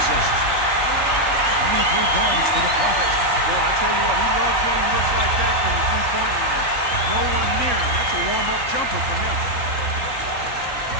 23 points for the Prophet. Boy, I tell you what, he loves getting looks like that from the three-point line. No one near him. That's a warm-up jumper for him.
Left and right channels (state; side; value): late; left; 3.6 ms